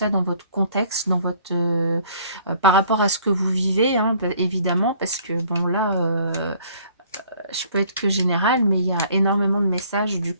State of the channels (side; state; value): both; inverted; correlation -0.58